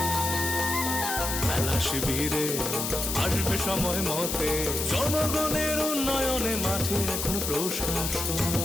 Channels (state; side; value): noise; left; hiss, 2 dB below the sound